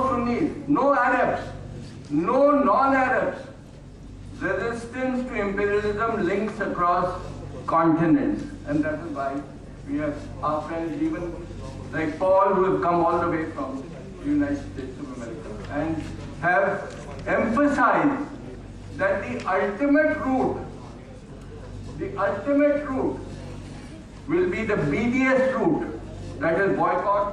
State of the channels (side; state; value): both; identical; correlation 1.00